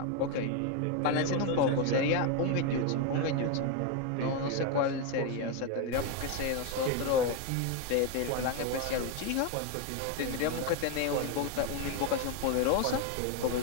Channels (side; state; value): both; different; correlation 0.02